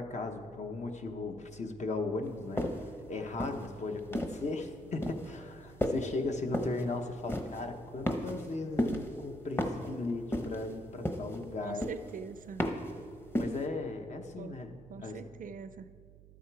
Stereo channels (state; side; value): noise; right; hum, 19 dB below the sound